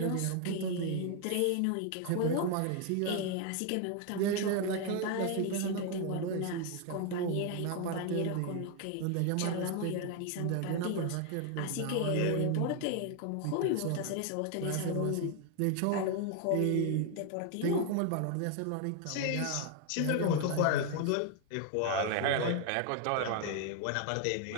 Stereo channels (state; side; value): different; both; correlation 0.01